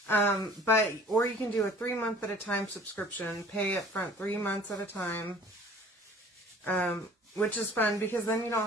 or you can do a 3-month at a time subscription. Pay up front 3 months at a time, which is fun because then you don't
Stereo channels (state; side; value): normal; both; correlation 0.49